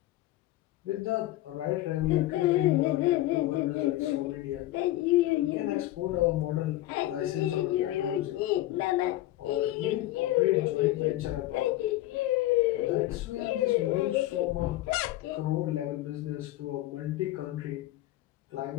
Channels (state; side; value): quieter; right; 15.8 dB